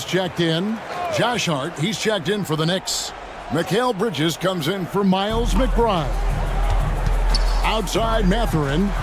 checked in. Josh Hart, he's checked in for the Knicks. Mikal Bridges comes in for Miles McBride. Outside Mathurin.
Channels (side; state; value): both; identical; correlation 1.00